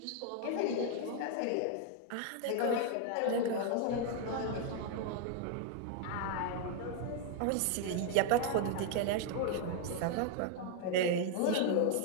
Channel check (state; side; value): different; both; correlation 0.00